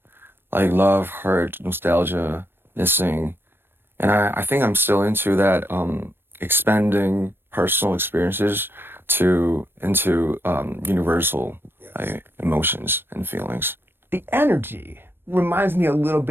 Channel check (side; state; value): left; late; 0.10 ms